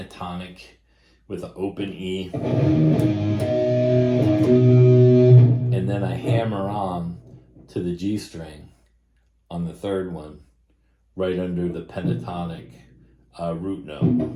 with an open E, and then I hammer on to the G string on the third one, right under the pentatonic root note.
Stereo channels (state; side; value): identical; both; correlation 1.00